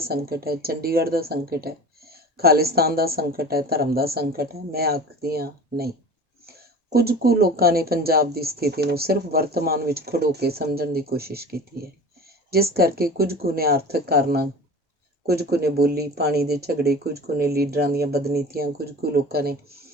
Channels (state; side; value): normal; both; correlation 0.37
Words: ਸੰਕਟ ਹੈ, ਚੰਡੀਗੜ੍ਹ ਦਾ ਸੰਕਟ ਹੈ, ਖਾਲਿਸਤਾਨ ਦਾ ਸੰਕਟ ਹੈ, ਧਰਮ ਦਾ ਸੰਕਟ ਹੈ? ਮੈਂ ਆਖਦੀ ਹਾਂ ਨਹੀਂ। ਕੁਝ ਕੁ ਲੋਕਾਂ ਨੇ ਪੰਜਾਬ ਦੀ ਸਥਿਤੀ ਨੂੰ ਸਿਰਫ ਵਰਤਮਾਨ ਵਿੱਚ ਖੜੋ ਕੇ ਸਮਝਣ ਦੀ ਕੋਸ਼ਿਸ਼ ਕੀਤੀ ਹੈ, ਜਿਸ ਕਰਕੇ ਕੁਝ ਕੁ ਨੇ ਆਰਥਿਕ ਕਾਰਨਾਂ, ਕੁਝ ਕੁ ਨੇ ਬੋਲੀ, ਪਾਣੀ ਦੇ ਝਗੜੇ, ਕੁਝ ਕੁ ਨੇ ਲੀਡਰਾਂ ਦੀਆਂ ਬਦਨੀਤੀਆਂ, ਕੁਝ ਕੁ